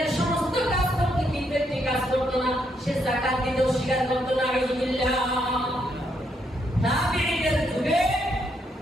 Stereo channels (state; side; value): normal; both; correlation 0.76